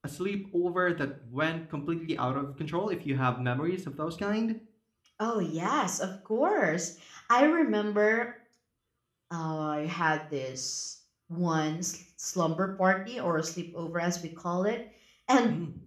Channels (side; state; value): both; identical; correlation 1.00